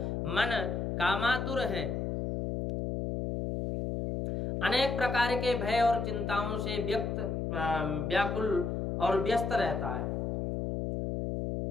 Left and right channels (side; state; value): left; noise; hum, 1 dB below the sound